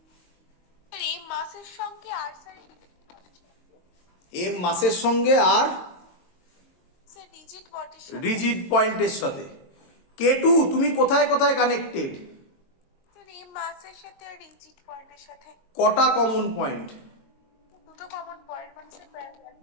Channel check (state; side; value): late; right; 22 ms